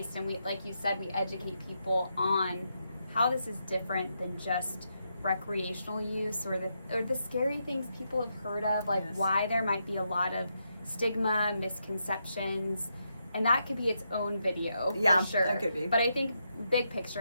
And we, like you said, we educate people on how this is different than just recreational use or the scary things people have heard of, like why there might be a lot of stigma, misconceptions. And that could be its own video, for sure. That could be. But I think, big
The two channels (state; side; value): inverted; both; correlation -0.82